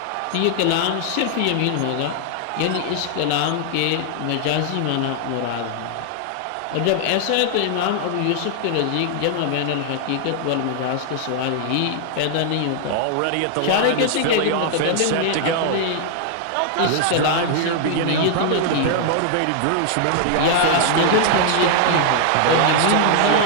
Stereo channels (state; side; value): different; both; correlation 0.00